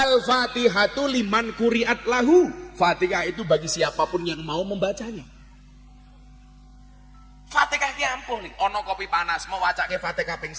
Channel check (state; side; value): identical; both; correlation 1.00